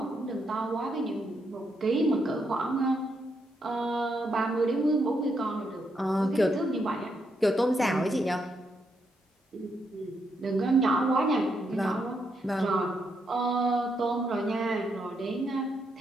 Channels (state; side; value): normal; both; correlation 0.79